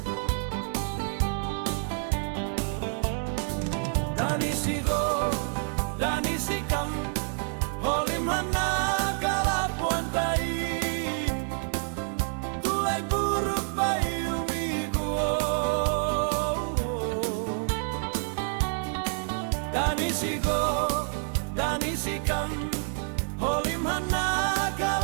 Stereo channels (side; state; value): left; silent; 56 dB below the other